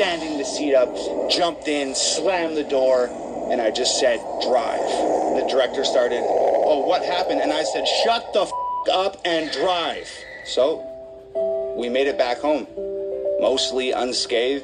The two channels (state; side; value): identical; both; correlation 1.00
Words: the seat up, jumped in, slammed the door, and I just said, drive. And the director started, oh, what happened? And I said, shut the f*** up and drive. So we made it back home, mostly